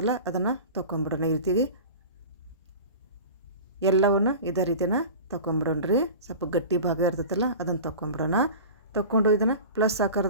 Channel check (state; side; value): inverted; both; correlation -0.35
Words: ಅದನ್ನು ತೊಗೊಂಬಿಡೋಣ. ಈ ರೀತಿಗೆ ಎಲ್ಲವನ್ನು ಇದೇ ರೀತಿನ ತೊಗೊಂಬಿಡೋಣ್ರಿ. ಸ್ವಲ್ಪ ಗಟ್ಟಿ ಭಾಗ ಇರ್ತೈತಲ್ಲ ಅದನ್ನು ತೊಗೊಂಬಿಡೋಣ. ತೊಗೊಂಡು ಇದನ್ನು ಪ್ಲಸ್